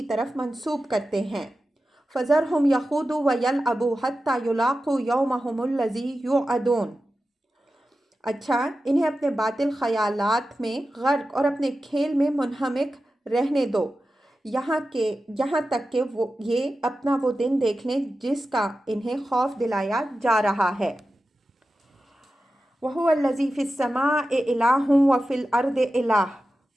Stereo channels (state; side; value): normal; both; correlation 0.93